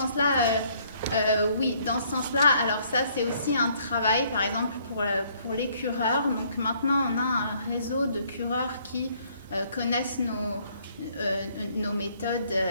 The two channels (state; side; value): inverted; both; correlation -0.64